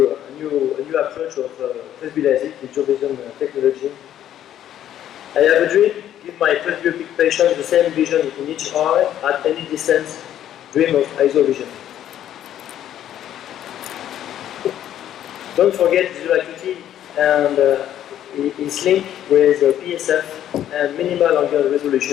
a new approach of Presbylasik, ISOVISION Technology. I have a dream, give my presbyopic patient the same vision in each eye at any distance, dream of ISOVISION. Don't forget visual acuity and it's linked with PSF and minimal angular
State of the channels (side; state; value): right; quieter; 11.2 dB